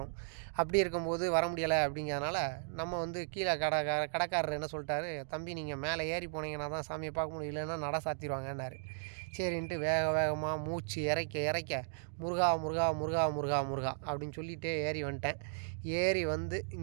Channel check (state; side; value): silent; left; digital silence